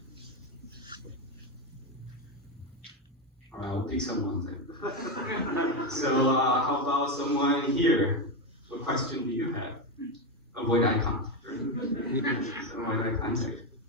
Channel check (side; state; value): both; normal; correlation 0.11